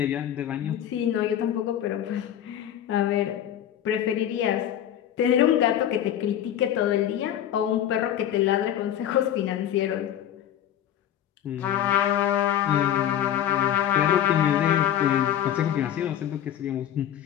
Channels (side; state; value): right; quieter; 10.8 dB